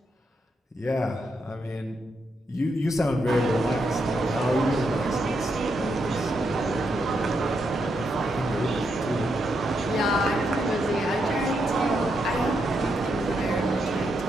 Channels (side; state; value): both; normal; correlation 0.81